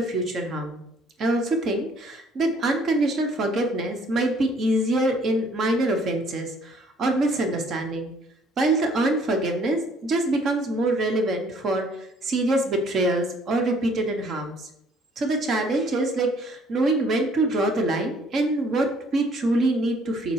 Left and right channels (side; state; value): both; normal; correlation 0.60